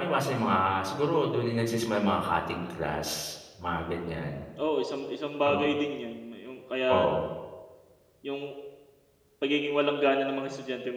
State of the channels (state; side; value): identical; both; correlation 1.00